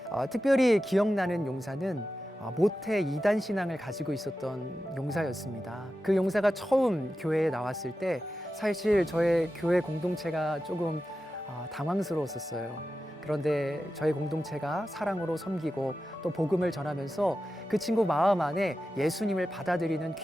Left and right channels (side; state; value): both; normal; correlation 0.92